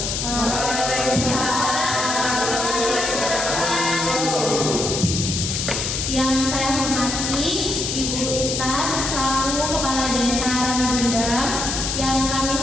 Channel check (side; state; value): left; noise; hiss, 2 dB below the sound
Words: Waalaikumsalam warahmatullahi wabarakatuh. Yang saya hormati Ibu Intan selaku Kepala Desa Ramigundang, yang kami